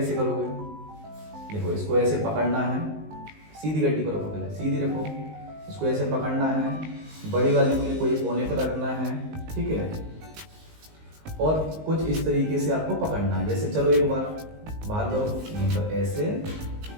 करोगे। देखो इसको ऐसे पकड़ना है, सीधी गड्डी को रखो, पहले सीधी रखो। इसको ऐसे पकड़ना है, बड़ी वाली उंगली को ये कोने पर रखना है। ठीक है, और कुछ इस तरीके से आपको पकड़ना है। जैसे चलो एक बार बाहर करो, यहीं पर ऐसे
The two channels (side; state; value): left; late; 19 ms